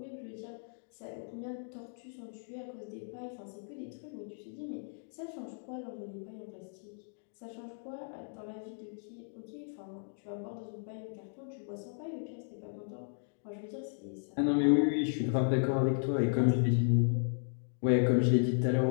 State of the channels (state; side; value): silent; right; digital silence